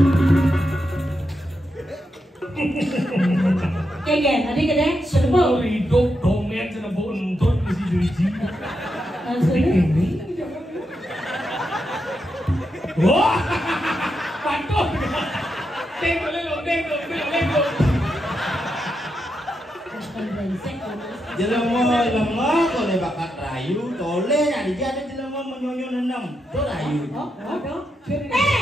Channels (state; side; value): normal; both; correlation 0.84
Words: Keken, tadi kene serba. Hidup komen sana bontot mesti juji. Wah, pantun. Tengok lelo. Jelema kole bakat rayu, tole nyari jadi jelema menyonyo nenam. To rayu. Oh,